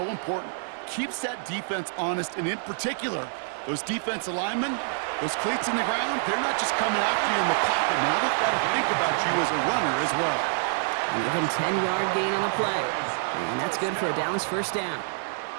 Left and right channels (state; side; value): silent; left; 60 dB below the other